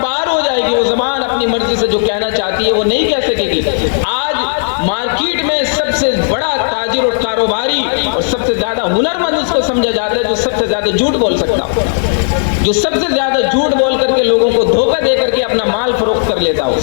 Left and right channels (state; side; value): silent; right; digital silence